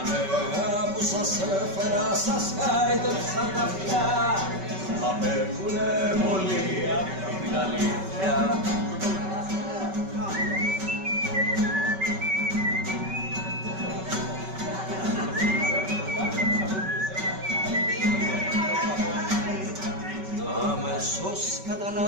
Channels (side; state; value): left; late; 5.3 ms